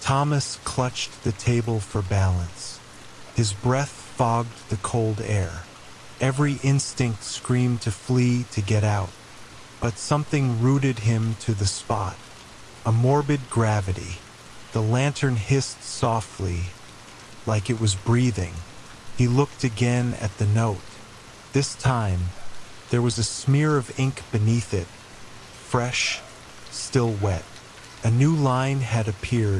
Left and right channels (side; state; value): both; identical; correlation 1.00